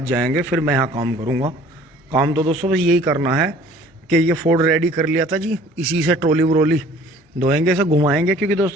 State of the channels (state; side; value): normal; both; correlation 0.52